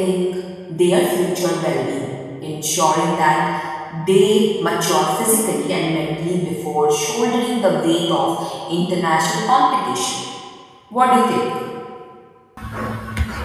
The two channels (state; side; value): identical; both; correlation 1.00